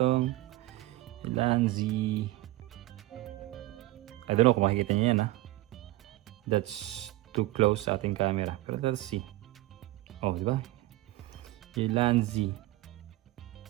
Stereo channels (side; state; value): left; quieter; 17.7 dB